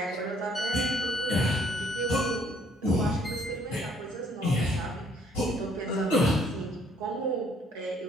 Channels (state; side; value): normal; both; correlation 0.64